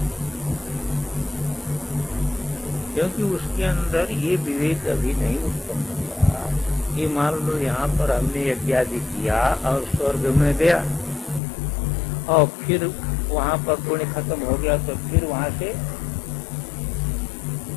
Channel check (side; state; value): right; drops out; at 11.4 s